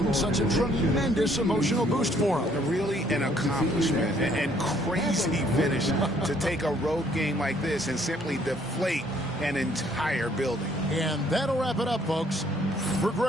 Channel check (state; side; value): normal; both; correlation 0.64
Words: such a tremendous emotional boost for them. Really an accomplishment and crazy finish to take a road game like this and simply deflate an entire building. And that'll wrap it up, folks. For